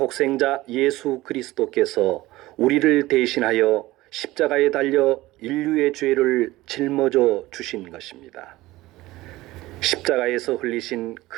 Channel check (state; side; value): quieter; left; 18.2 dB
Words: 예수 그리스도께서 우리를 대신하여 십자가에 달려 인류의 죄를 짊어져 주신 것입니다. 십자가에서 흘리신